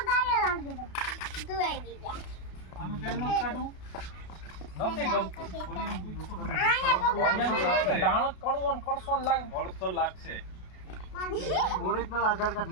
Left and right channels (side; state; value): right; late; 33 ms